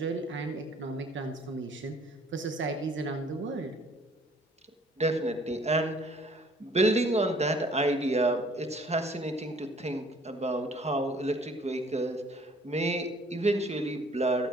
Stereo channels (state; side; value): normal; both; correlation 0.57